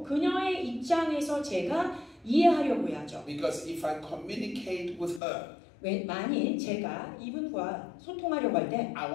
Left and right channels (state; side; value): drops out; right; at 5.2 s